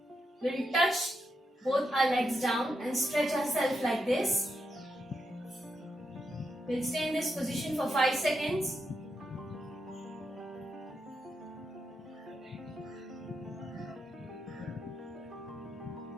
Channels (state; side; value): normal; both; correlation 0.84